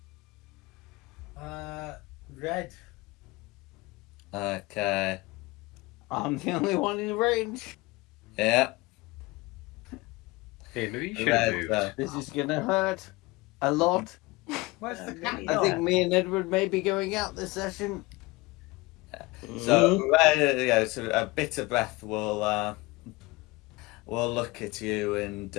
Red. Okay. I'm the only one in range. Yeah. Hey, maybe you should have Red. moved. This is gonna hurt a lot. Where's the cat maybe I gone? think me and Edward may be going out this session. So Red, yeah. So a bitter breath will look at you and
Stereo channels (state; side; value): quieter; right; 22.5 dB